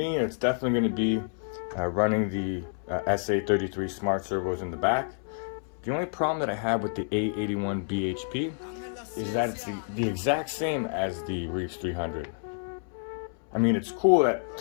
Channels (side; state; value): right; silent; 59 dB below the other